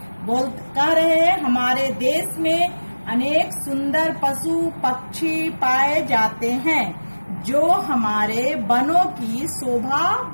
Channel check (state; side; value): inverted; both; correlation -1.00